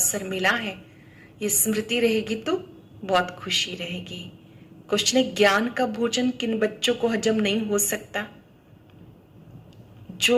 मिला है, ये स्मृति रहेगी तो बहुत खुशी रहेगी। क्वेश्चन है ज्ञान का भोजन किन बच्चों को हजम नहीं हो सकता?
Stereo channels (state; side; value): identical; both; correlation 1.00